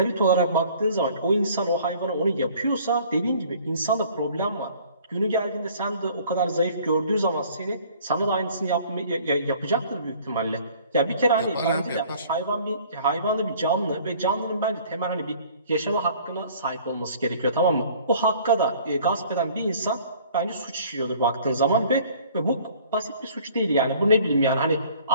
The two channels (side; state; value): both; inverted; correlation -0.53